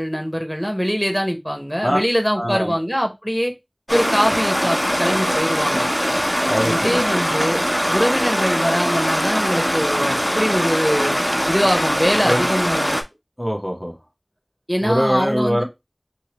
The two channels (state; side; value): identical; both; correlation 1.00